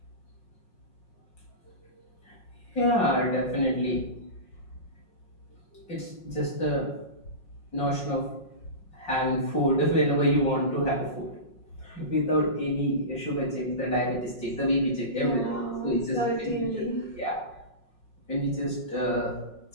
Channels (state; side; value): late; right; 5.5 ms